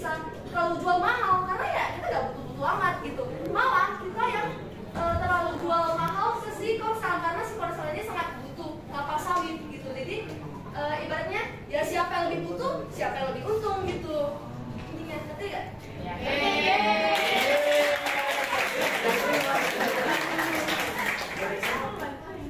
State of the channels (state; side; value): identical; both; correlation 1.00